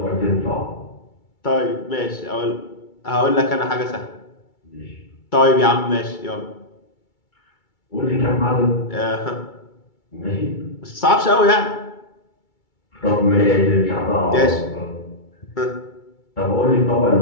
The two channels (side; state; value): right; late; 2.3 ms